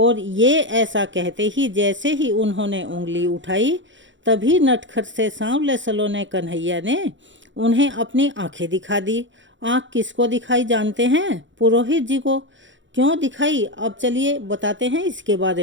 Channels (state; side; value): late; left; 0.54 ms